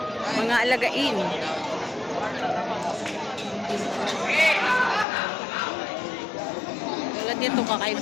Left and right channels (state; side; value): drops out; right; at 5.1 s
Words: Mga alagain. Tulad nito,